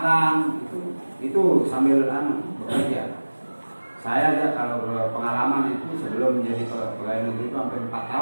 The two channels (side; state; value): both; inverted; correlation -1.00